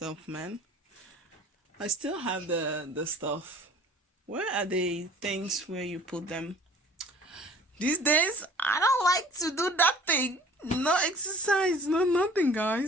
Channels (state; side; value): normal; both; correlation 0.50